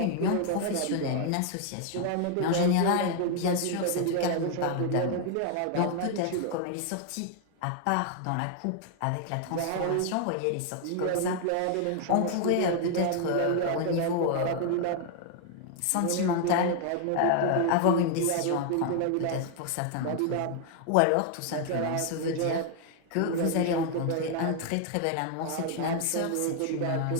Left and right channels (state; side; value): different; both; correlation 0.00